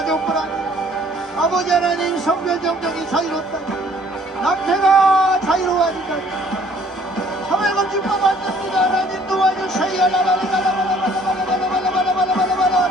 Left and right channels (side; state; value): both; normal; correlation 0.58